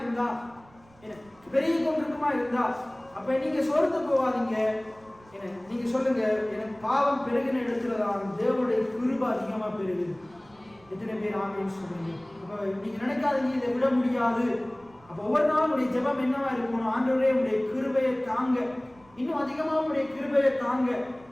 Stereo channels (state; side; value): noise; right; rumble, 28 dB below the sound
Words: இருந்தா, அப்ப நீங்க சோர்ந்து போவாதீங்க. நீங்க சொல்லுங்க, எனக்கு பாவம் பெருகின இடத்துலதான் தேவனுடைய கிருபை அதிகமா பெருகுது. எத்தனை பேர் ஆமென் சொல்றீங்க? அப்ப நீங்க நினைக்காதீங்க இதை விட முடியாது. அப்ப ஒவ்வொரு நாளும் உடைய ஜெபம் என்னவா இருக்கணும்? ஆண்டவரே உடைய கிருபையை தாங்க, இன்னும் அதிகமா உடைய கிருபையை தாங்க.